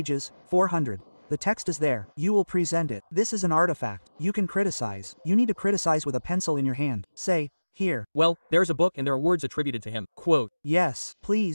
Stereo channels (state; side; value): inverted; both; correlation -1.00